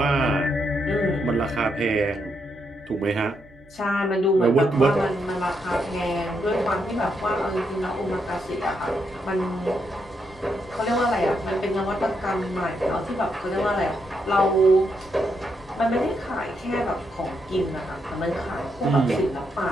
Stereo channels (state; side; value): noise; right; hum, 26 dB below the sound